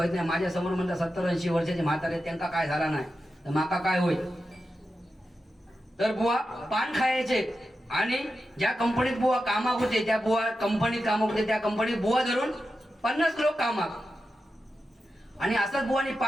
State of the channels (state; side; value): normal; both; correlation 0.90